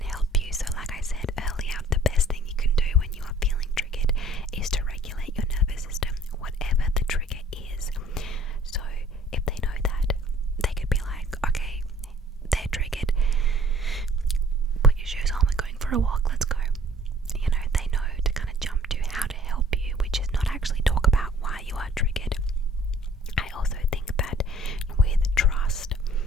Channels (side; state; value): both; normal; correlation 0.55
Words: help you. So like I said earlier, the best thing you can do when you are feeling triggered is to regulate your nervous system, whatever the trigger is. So if they know that, they could be like, okay, they're triggered, put your shoes on, we're going for a walk, let's go. They know to kind of jump to how to help you, which is not actually talk about why you are triggered. I also think that with trust,